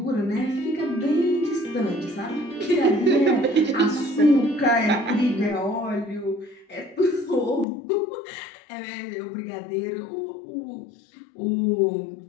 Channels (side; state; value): right; drops out; at 7.7 s